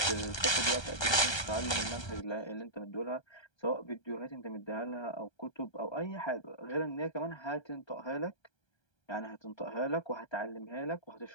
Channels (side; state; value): right; late; 1.3 ms